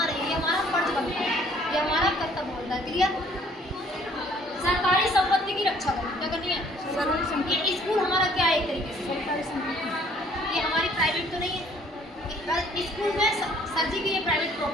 नहीं। ये हमारा फर्ज बनता है, ये हमारा कर्तव्य बनता है। क्लियर? सरकारी संपत्ति की रक्षा करनी, क्या करनी है? ये स्कूल हमारा क्या है, एक तरीके से सरकारी संपत्ति, ये हमारी प्राइवेट तो नहीं है। स्कूल में सर जी की ये प्राइवेट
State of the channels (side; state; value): both; normal; correlation 0.59